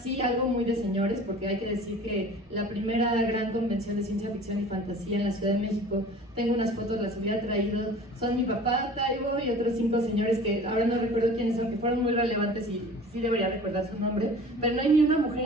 algo muy de señores, porque hay que decir que la primera gran convención de ciencia ficción y fantasía en la Ciudad de México, tengo unas fotos, las hubiera traído, son mi papá, Taibo y otros 5 señores que ahora no recuerdo quiénes son, que fueron muy relevantes y sí debería recordar su nombre, pero no hay ni una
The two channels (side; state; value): both; normal; correlation 0.43